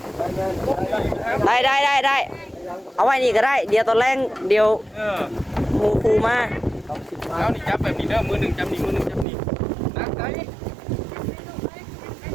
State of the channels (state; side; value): drops out; left; at 9.2 s